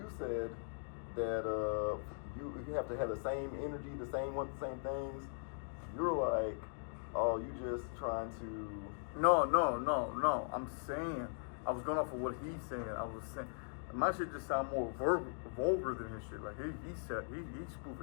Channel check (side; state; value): right; silent; digital silence